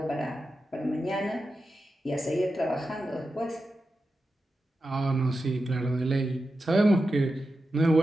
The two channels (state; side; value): normal; both; correlation 0.90